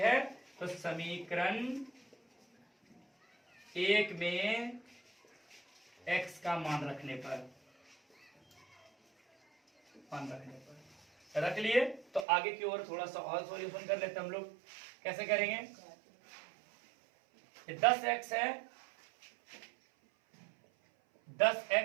तो समीकरण 1 में x का मान रखने पर रख लिए, तो आगे की ओर थोड़ा सा और सॉल्यूशन कर लेते हैं हम लोग। कैसे करेंगे? ये 10x है,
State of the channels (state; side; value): drops out; left; at 12.2 s